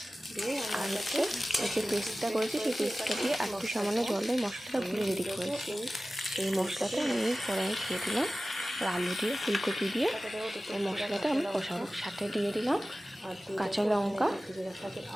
আর হচ্ছে এই যে পেস্টটা করেছি সেই পেস্টটা দিয়ে একটু সামান্য জল দিয়ে মশলাটা গুলে রেডি করেছি। এই মশলাটা আমি কড়াইয়ে দিয়ে দিলাম, আর আলু দিয়ে ফুলকপি দিয়ে এই মশলাটা আমি কষাবো। সাথে দিয়ে দিলাম কাঁচা লঙ্কা,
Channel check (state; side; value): normal; both; correlation 0.96